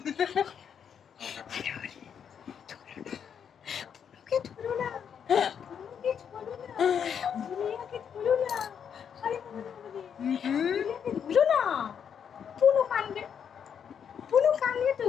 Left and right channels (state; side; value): quieter; right; 7.8 dB